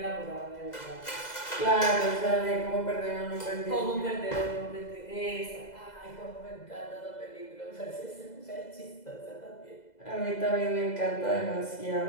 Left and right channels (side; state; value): right; late; 2.0 ms